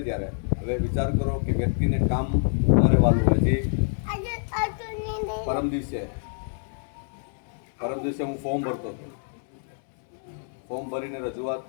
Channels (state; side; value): silent; right; 61 dB below the other